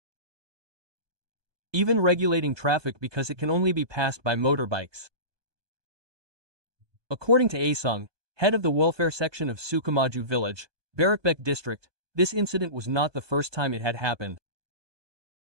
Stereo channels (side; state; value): left; late; 1.2 ms